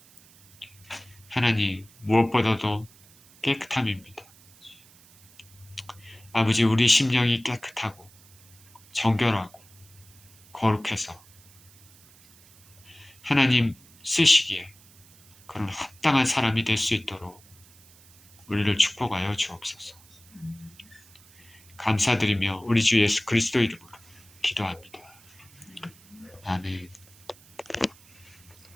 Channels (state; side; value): noise; right; hiss, 25 dB below the sound